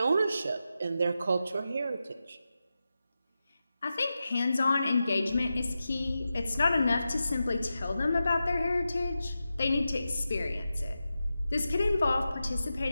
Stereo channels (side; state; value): both; inverted; correlation -0.91